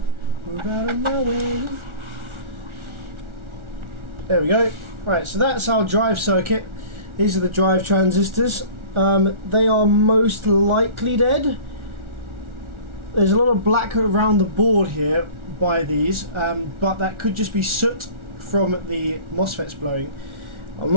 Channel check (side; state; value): left; late; 1.4 ms